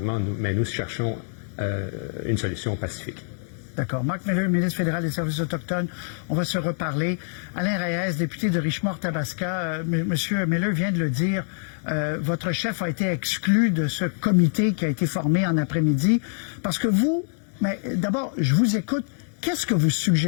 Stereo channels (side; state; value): right; silent; digital silence